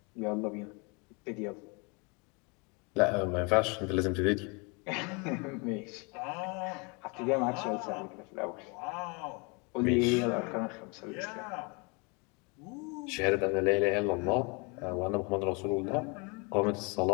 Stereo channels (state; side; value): quieter; right; 31.2 dB